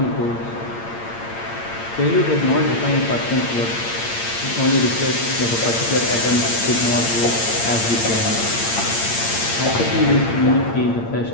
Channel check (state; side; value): late; right; 8.8 ms